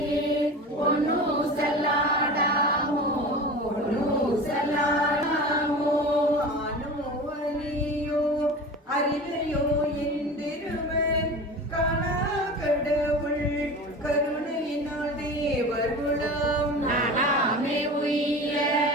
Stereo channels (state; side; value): normal; both; correlation 0.33